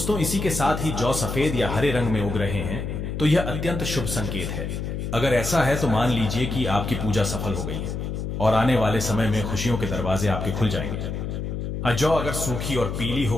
इसी के साथ ही जौ सफेद या हरे रंग में उग रहे हैं तो यह अत्यंत शुभ संकेत है। अगर ऐसा है तो मान लीजिए कि आपकी पूजा सफल हो गई है और आने वाले समय में खुशियों के दरवाजे आपके खुल जाएंगे। जौ अगर सूखी और पीली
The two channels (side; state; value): left; noise; hum, 4 dB below the sound